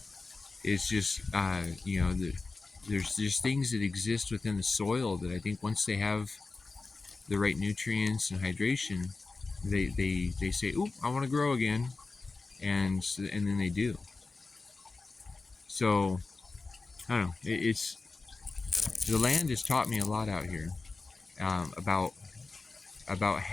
It's just, there's just things that exist within the soil that I think once they have the right nutrients and hydration, they say, "Oop, I want to grow again," and then they do. So I don't know. It's the land has taught me a lot out here, about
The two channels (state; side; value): quieter; right; 3.8 dB